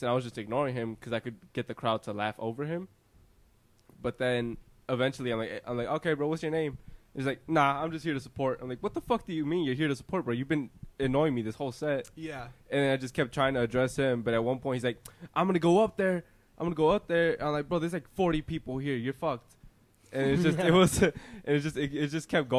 and I was just ignoring him because I could get the crowd to laugh over him. But then eventually, I'm like, "Okay, bro, what's your name?" He's like, "Nah, I'm just here to support." I'm like, "What the fuck do you mean you're here to support, bro? You've been annoying me this whole set." Yeah. And then I just kept trying to address him, but at one point he's like, "I'm gonna go up there. I'm like, "Bro, there's like 40 people here. You're fucked." And it's just it just kept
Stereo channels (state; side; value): identical; both; correlation 1.00